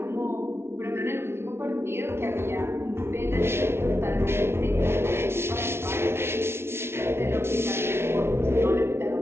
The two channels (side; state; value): left; late; 0.12 ms